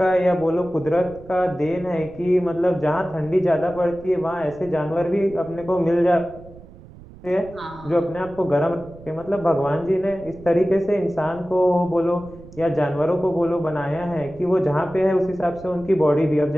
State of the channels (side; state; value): right; noise; rumble, 19 dB below the sound